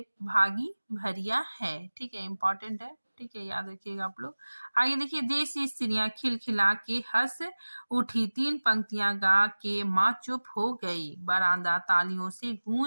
भागी भरिया है। ठीक है, इम्पोर्टेंट है। ठीक है, याद रखिएगा आप लोग। आगे देखिए, देसी स्त्रियां खिलखिला के हंस उठी। 3 पंक्तियां गा के माँ चुप हो गई। बरामदा तालियों से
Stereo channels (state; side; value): inverted; both; correlation -1.00